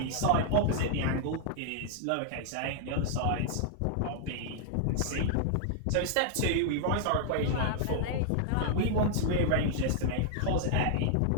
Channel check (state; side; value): different; both; correlation -0.01